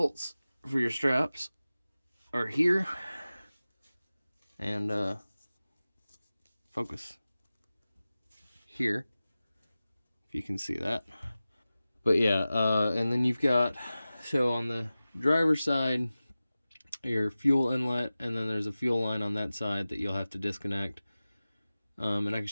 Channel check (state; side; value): inverted; both; correlation -0.96